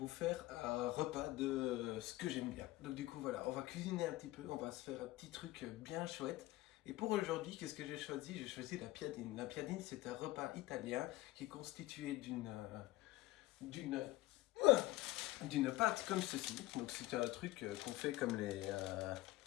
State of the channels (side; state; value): right; quieter; 18.0 dB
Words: faire un repas de ce que j'aime bien. Donc du coup voilà, on va cuisiner un petit peu. On va se faire un petit truc bien chouette. Et pour aujourd'hui, qu'est-ce que j'ai choisi? J'ai choisi la piadine. La piadine, c'est un repas italien qui est constitué d'une pâte comme ceci. Donc c'est un truc qu'on fait comme les